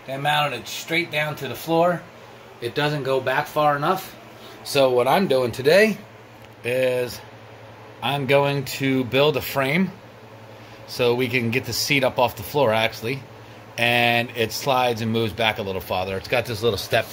They mounted it straight down to the floor. It doesn't go back far enough. So what I'm doing today is I'm going to build a frame so we can get the seat up off the floor actually, and it slides and moves back a little farther. It's got this little step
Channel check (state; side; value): identical; both; correlation 1.00